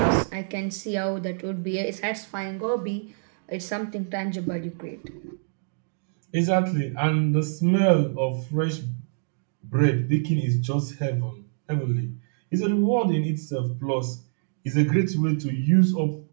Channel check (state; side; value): silent; left; digital silence